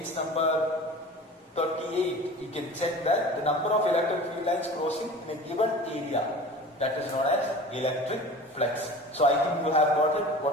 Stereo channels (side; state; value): both; normal; correlation 0.38